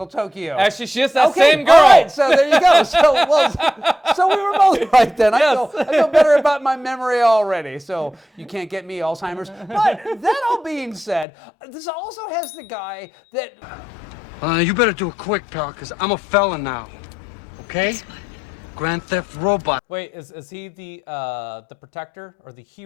Tokyo. Actually, she is that Okay, same girl. All right, so there you go. So we were both right then. I feel better about my memory already. So you can't get me Alzheimer's. But that all being said, this also has the guy that. You better do it quick, pal, because I'm a felon now. Okay? Grand Theft Robot. Wait, is he the protector or the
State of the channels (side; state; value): right; drops out; at 11.2 s